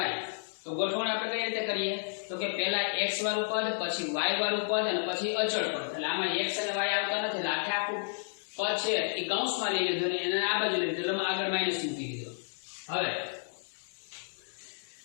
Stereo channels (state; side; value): silent; right; 55 dB below the other